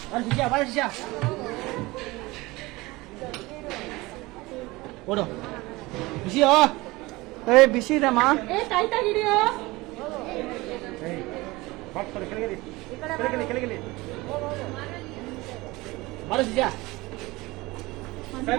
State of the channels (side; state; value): left; quieter; 21.4 dB